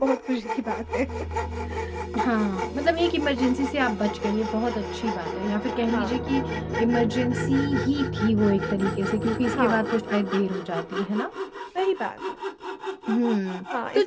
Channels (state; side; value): identical; both; correlation 1.00